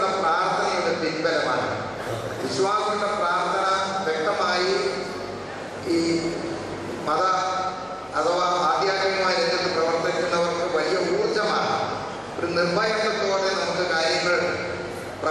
പ്രാർത്ഥനയുടെ പിൻബലമാണ്. വിശ്വാസികളുടെ പ്രാർത്ഥന വ്യക്തമായി ഈ മത അഥവാ ആധ്യാത്മികമായ രംഗത്ത് പ്രവർത്തിക്കുന്നവർക്ക് വലിയ ഊർജമാണ്. ഒരു നിർഭയത്വത്തോടെ നമുക്ക് കാര്യങ്ങൾ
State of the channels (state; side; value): identical; both; correlation 1.00